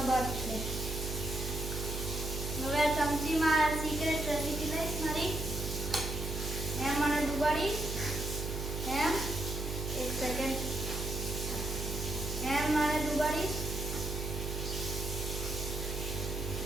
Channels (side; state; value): right; noise; hum, 4 dB below the sound